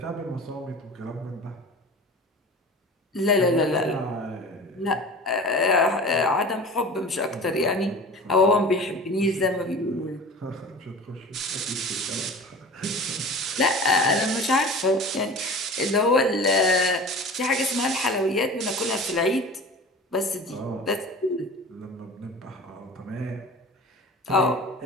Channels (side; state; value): both; normal; correlation 0.38